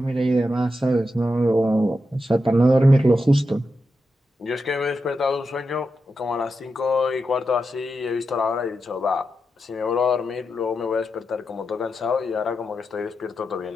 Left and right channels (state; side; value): normal; both; correlation 0.87